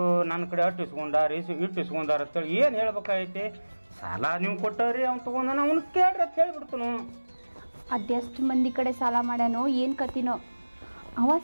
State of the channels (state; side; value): inverted; both; correlation -1.00